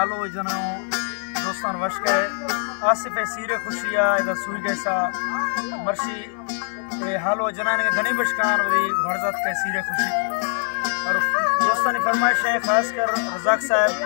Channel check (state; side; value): silent; right; 63 dB below the other